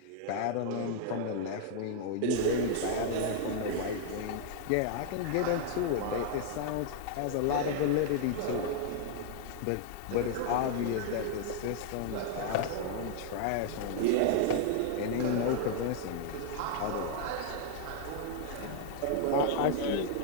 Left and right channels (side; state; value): both; different; correlation 0.00